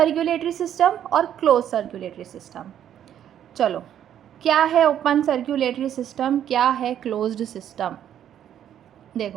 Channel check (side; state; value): left; quieter; 10.2 dB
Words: सिस्टम और क्लोज सर्कुलेटरी सिस्टम। चलो, क्या है ओपन सर्कुलेटरी सिस्टम, क्या है क्लोज्ड सिस्टम?